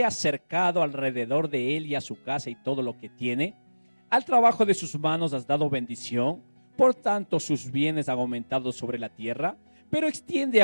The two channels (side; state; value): both; inverted; correlation -1.00